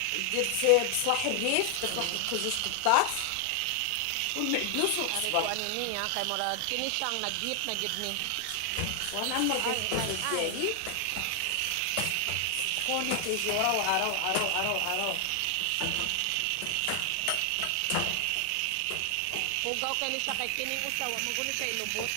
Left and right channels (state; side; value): different; both; correlation 0.00